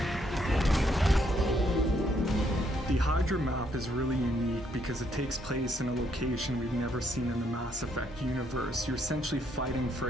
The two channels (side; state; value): both; normal; correlation 0.72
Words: The Hydra map is really unique because it takes place in a location we've never seen in the Mass Effect universe. You're essentially fighting for